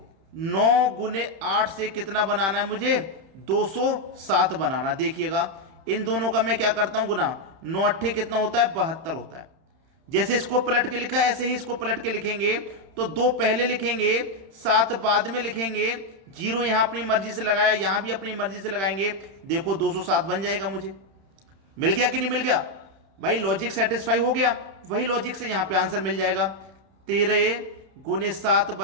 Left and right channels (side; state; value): left; late; 31 ms